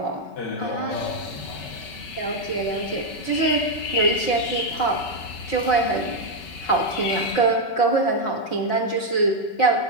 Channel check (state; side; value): late; right; 5.3 ms